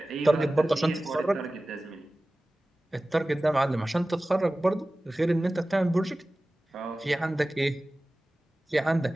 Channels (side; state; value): both; normal; correlation 0.97